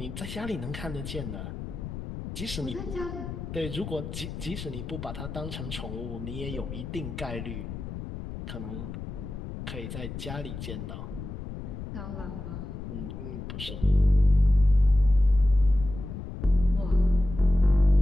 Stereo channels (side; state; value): left; noise; rumble, 8 dB below the sound